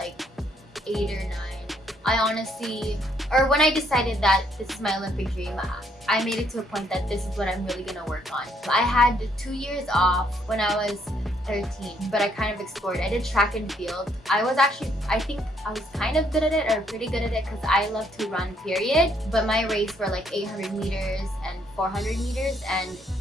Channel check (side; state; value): both; normal; correlation 0.69